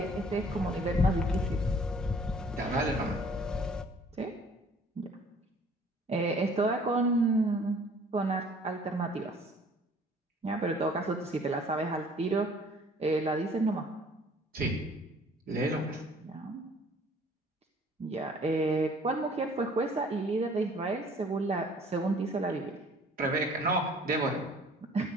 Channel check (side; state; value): both; normal; correlation 0.55